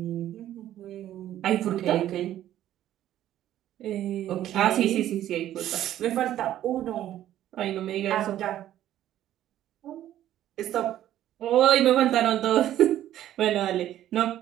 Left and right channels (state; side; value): quieter; left; 12.4 dB